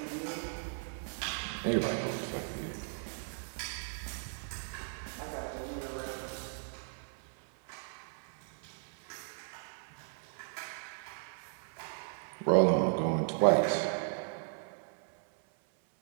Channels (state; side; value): silent; left; 54 dB below the other